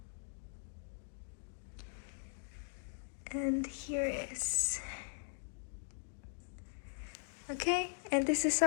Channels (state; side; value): silent; right; digital silence